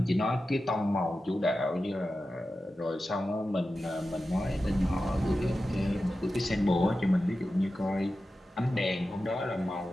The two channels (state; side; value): normal; both; correlation 0.93